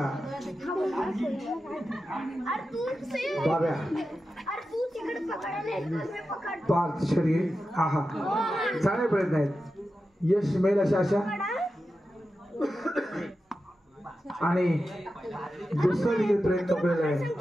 बाब्या पार्थ शरीर हा हा चांगले प्रयत्न आहेत. यश मिळेल अशा आशा. आणि दुसरा देखील प्रयत्न केलेला आहे.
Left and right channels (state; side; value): normal; both; correlation 0.91